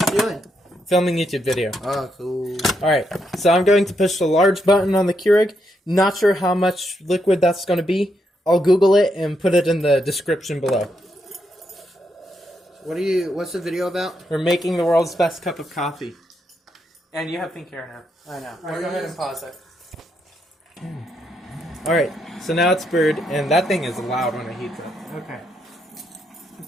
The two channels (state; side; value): normal; both; correlation 0.79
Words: are you doing? Filming YouTube video. Oh, cool. Alright, so I'm going to push the large button on the Keurig. Not sure how much liquid that's going to be. I'll Google it and put it in the description below. What's the video about? We're making the world's best cup of coffee. And you have pink hair now. I know. Alright, go ahead and pause it. Alright, so now it's brewed, and that thing is loud when it heats up. Okay.